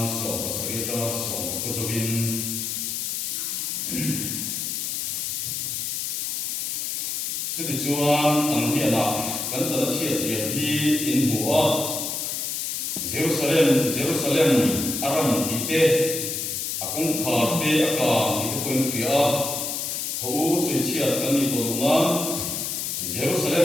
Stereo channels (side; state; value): left; noise; hiss, 2 dB below the sound